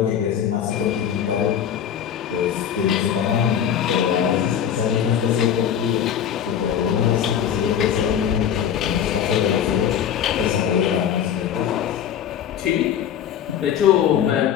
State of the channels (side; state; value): right; quieter; 9.1 dB